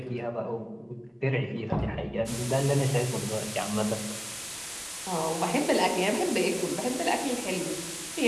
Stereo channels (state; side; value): identical; both; correlation 1.00